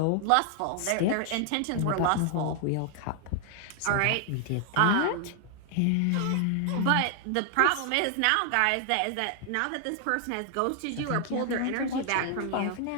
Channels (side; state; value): both; different; correlation 0.00